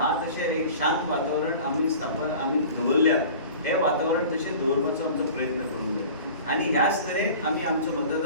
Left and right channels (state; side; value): inverted; both; correlation -0.42